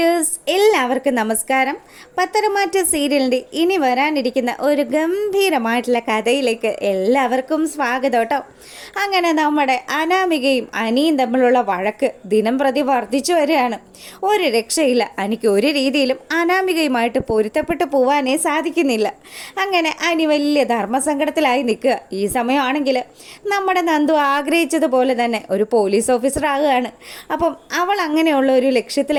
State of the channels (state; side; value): identical; both; correlation 1.00